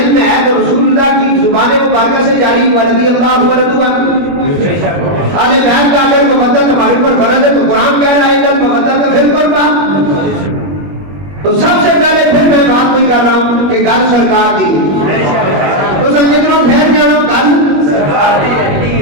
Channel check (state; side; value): late; left; 21 ms